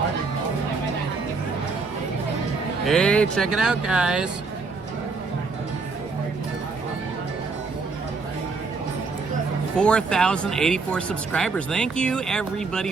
Hey, check it out, guys. $4,084 subscribers. Thank you, everybody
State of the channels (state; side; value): quieter; left; 4.3 dB